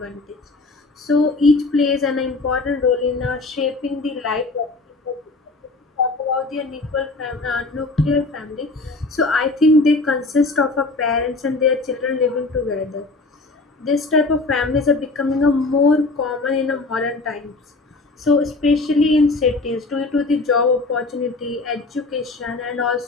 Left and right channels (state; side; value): quieter; right; 3.4 dB